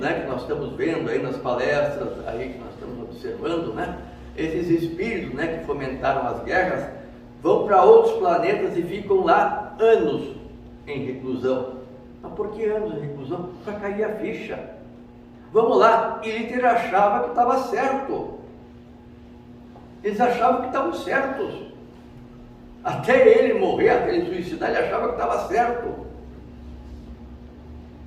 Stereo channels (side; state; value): both; identical; correlation 1.00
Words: que nós estamos vendo aí, nas palestras aí que nós estamos observando, né, esses espíritos, né, que fomentaram as guerras, vão para outros planetas e ficam lá anos em reclusão. Mas por que anos em reclusão? Para cair a ficha. Vamos lá, e Hitler achava que estava certo. Eles achavam que estavam certos. Até ele morrer, até ele suicidar, ele achava que estava certo.